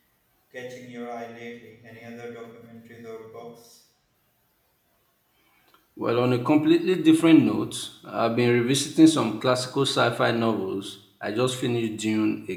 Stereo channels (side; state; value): both; identical; correlation 1.00